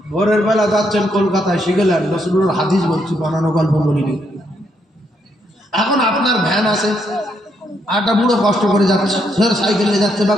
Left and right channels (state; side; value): normal; both; correlation 0.76